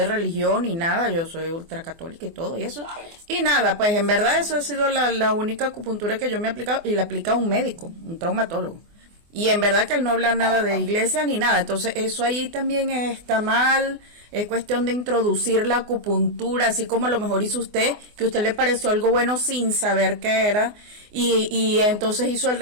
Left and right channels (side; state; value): left; late; 24 ms